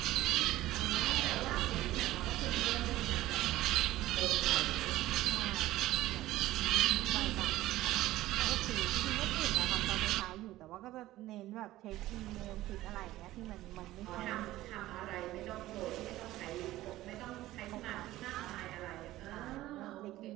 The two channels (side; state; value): left; quieter; 16.0 dB